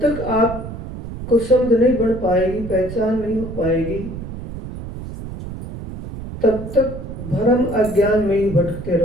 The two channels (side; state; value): right; noise; rumble, 10 dB below the sound